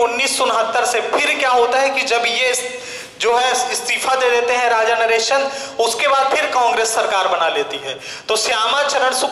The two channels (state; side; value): identical; both; correlation 1.00